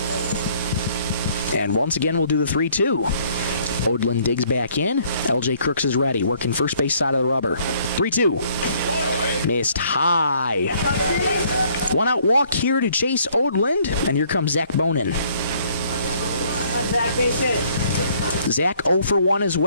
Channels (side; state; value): both; inverted; correlation -0.62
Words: And once again, we'll do the 3-2. Odlin digs back in. LJ Crooks is ready, working first base side of the rubber. 3-2. Missed high. 1-out walk here to Chase Odland, and here comes Zach Bonin. Zach, base hit. Zach 0 for 1 as